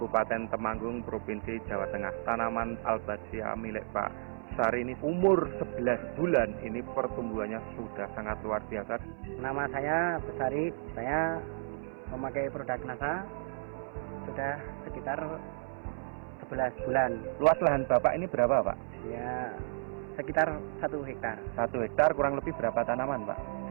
Temanggung, Provinsi Jawa Tengah. Tanaman Albazia milik Pak Besari ini umur 11 bulan, ini pertumbuhannya sudah sangat luar biasa. Nama saya Besari, saya memakai produk NASA sudah sekitar 11 bulan. Luas lahan Bapak ini berapa, Pak? Ya, sekitar 1 hektar. 1 hektar kurang lebih berapa tanaman, Pak?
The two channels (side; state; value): left; silent; 56 dB below the other